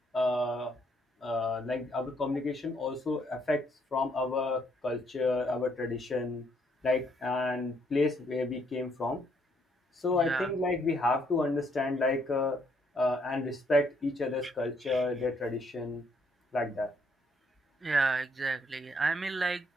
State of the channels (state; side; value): normal; both; correlation 0.70